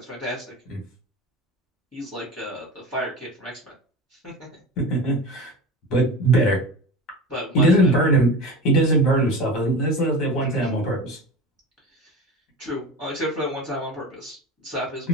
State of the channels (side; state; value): both; normal; correlation 0.31